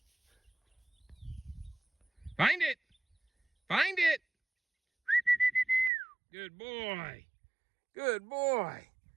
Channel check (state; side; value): drops out; left; at 5.9 s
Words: Find it. Find it. Good boy. Good boy.